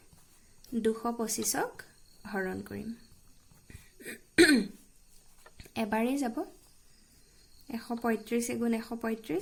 225ক হৰণ কৰিম। এবাৰেই যাব 135 ×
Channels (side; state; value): both; identical; correlation 1.00